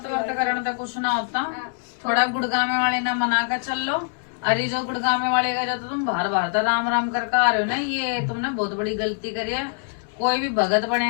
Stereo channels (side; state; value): right; silent; digital silence